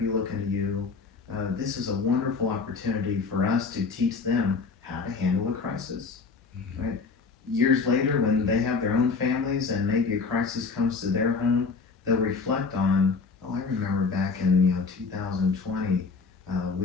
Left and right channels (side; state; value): right; quieter; 4.7 dB